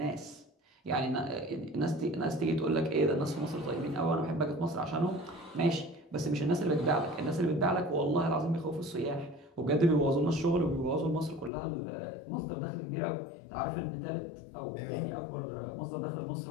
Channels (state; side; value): drops out; right; at 11.5 s